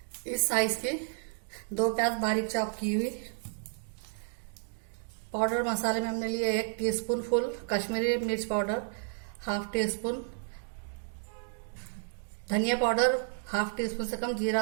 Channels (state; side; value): silent; left; digital silence